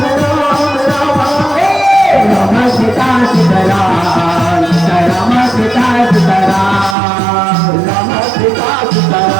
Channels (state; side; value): drops out; left; at 7.0 s